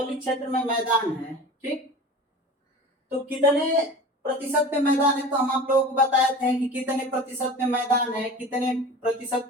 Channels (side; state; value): both; normal; correlation 0.36